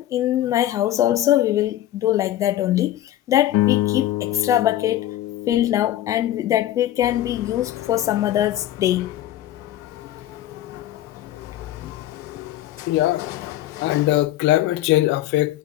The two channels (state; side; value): quieter; right; 13.5 dB